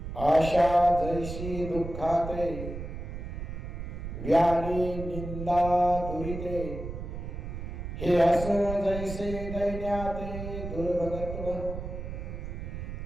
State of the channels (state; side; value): noise; right; rumble, 7 dB below the sound